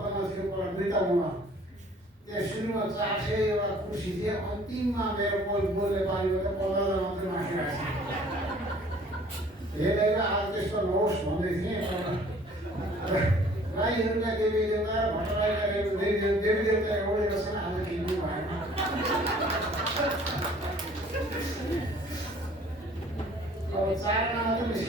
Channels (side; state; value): both; normal; correlation 0.54